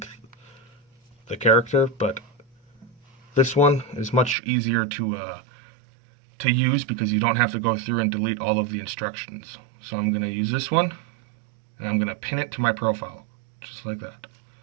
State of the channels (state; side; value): drops out; left; at 4.4 s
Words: the character, but this one is much easier to use because you don't have to go through and delete all of the instructions. So I'm going to use this one, and I'm going to pin it to my profile, just like that.